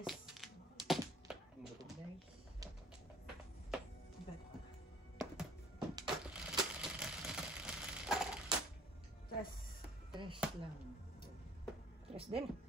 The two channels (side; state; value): both; normal; correlation 0.55